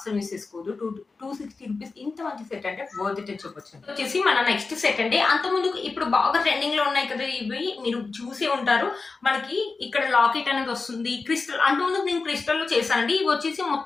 మిస్ చేసుకోదు. 260 రూపీస్ ఇంత మంచి సెట్ అంటే వర్త్ ఇట్ అని చెప్పొచ్చు. వచ్చేసి మన నెక్స్ట్ సెట్ అండి. అంత ముందు ఇప్పుడు బాగా ట్రెండింగ్ లో ఉన్నాయి కదా ఇవి, మీరు చూసే ఉంటారు. మనకి ఇక్కడ లాకెట్ అనేది వస్తుంది. క్రిస్టల్ అంత ముందు నేను క్రిస్టల్ లో చేశానండి. ఇవి వచ్చేసి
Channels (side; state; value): right; quieter; 4.1 dB